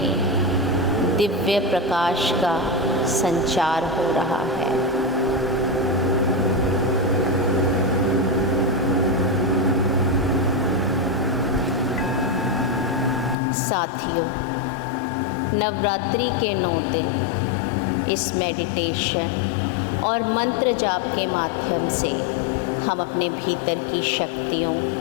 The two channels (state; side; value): drops out; right; at 13.4 s